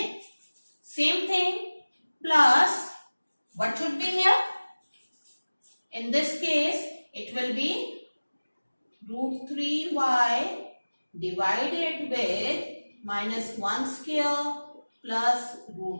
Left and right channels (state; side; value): inverted; both; correlation -1.00